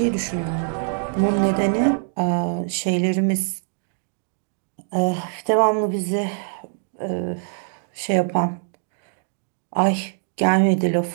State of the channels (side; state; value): left; silent; digital silence